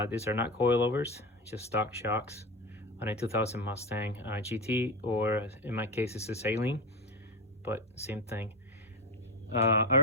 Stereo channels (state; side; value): normal; both; correlation 0.17